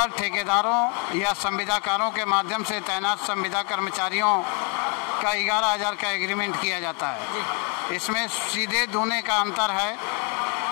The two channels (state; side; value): quieter; right; 36.2 dB